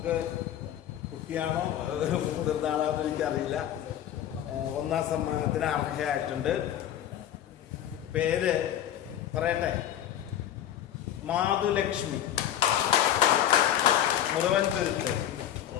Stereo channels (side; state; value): right; quieter; 11.1 dB